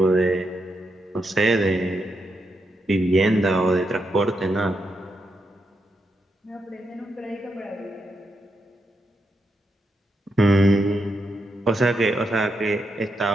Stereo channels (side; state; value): both; normal; correlation 0.83